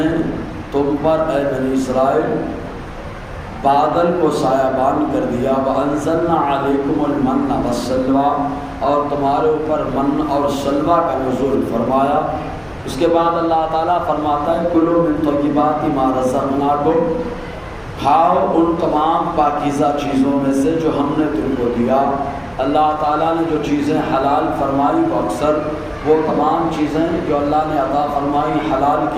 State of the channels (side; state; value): both; identical; correlation 1.00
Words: تم پر اے بنی اسرائیل بادل کو سایہبان کر دیا وَأَنزَلْنَا عَلَيْكُمُ الْمَنَّ وَالسَّلْوَىٰ اور تمہارے اوپر من اور سلوہ کا نزول فرمایا۔ اس کے بعد اللہ تعالیٰ فرماتا ہے کُلُوا مِن طَیِّبَاتِ مَا رَزَقْنَاکُمْ کھاؤ ان تمام پاکیزہ چیزوں میں سے جو ہم نے تم کو دیا۔ اللہ تعالیٰ نے جو چیزیں حلال فرمائی وہ اکثر وہ تمام چیزیں جو اللہ نے عطا فرمائی حلال